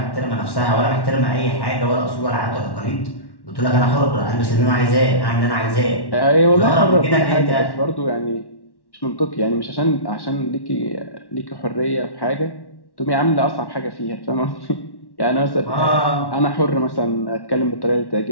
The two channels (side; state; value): right; late; 1.1 ms